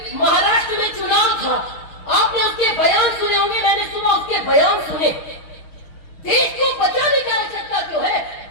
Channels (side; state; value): right; late; 6.3 ms